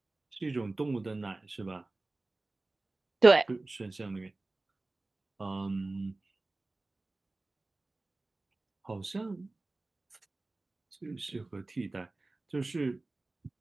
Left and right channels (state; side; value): quieter; left; 3.1 dB